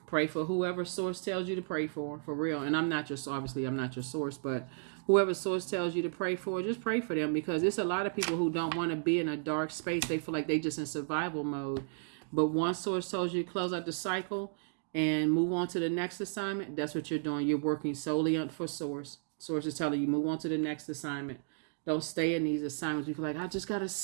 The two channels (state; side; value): silent; left; digital silence